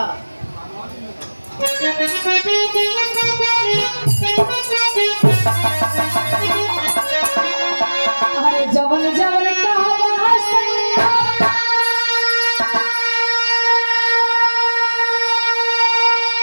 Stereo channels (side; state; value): both; inverted; correlation -1.00